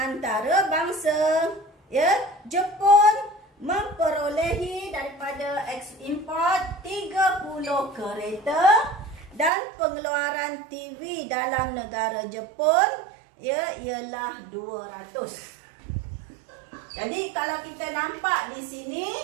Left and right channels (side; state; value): left; drops out; at 9.5 s